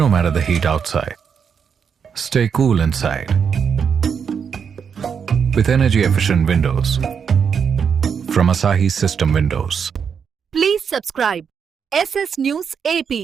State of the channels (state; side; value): quieter; left; 6.9 dB